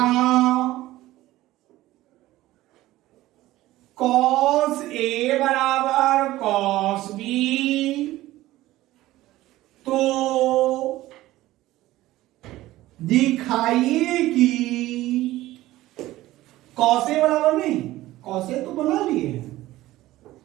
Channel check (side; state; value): left; quieter; 16.4 dB